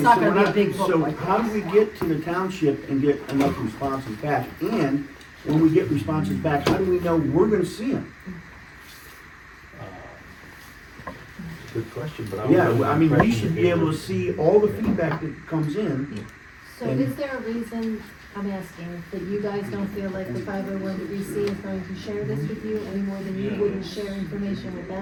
not so gonna we're be a big book So like how do this. we get to the township and get enough responses back? And when we get responses back, how do we know we're gonna see them? Good question, but I was Yeah, under I the mean, we impression should that be they able were- to see all the feedback that comes in. So And- is there a reason, I'm asking, that you guys don't feel like the 501c is going to share this with you any more than you wouldn't share information with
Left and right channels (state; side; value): identical; both; correlation 1.00